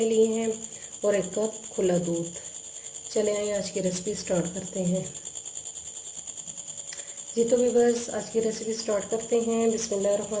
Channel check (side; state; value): both; identical; correlation 1.00